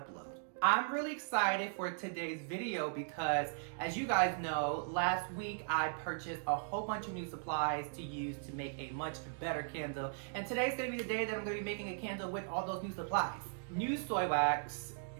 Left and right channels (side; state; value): left; silent; digital silence